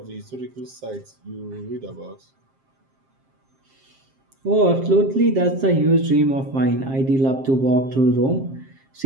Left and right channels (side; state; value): left; late; 7.5 ms